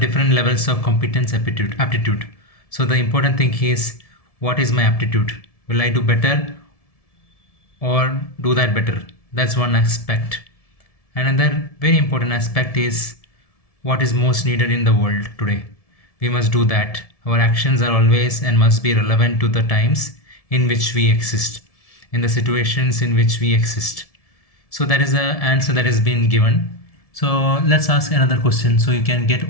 different levels of competence, aptitude. So the important thing is, what is my aptitude? Will I do better or do that better? That's one aspect. Another very important aspect is what is most needed in the world today. We must do that. Our actions are always and must be relevant to the times in which we exist, in the situations in which we exist. So that is the answer that has been given. So let's ask another question, so you can get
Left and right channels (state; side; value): late; right; 1.7 ms